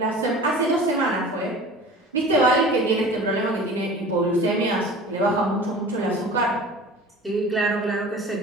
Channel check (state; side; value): normal; both; correlation 0.40